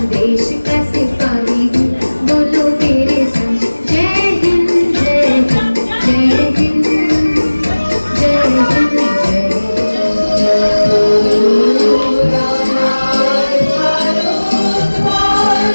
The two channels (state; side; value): inverted; both; correlation -1.00